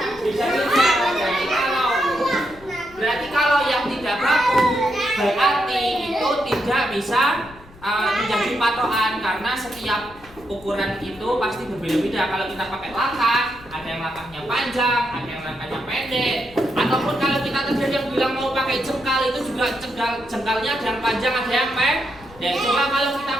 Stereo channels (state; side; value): noise; left; rumble, 22 dB below the sound